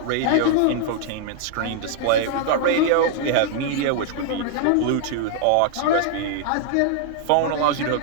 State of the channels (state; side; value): different; both; correlation 0.00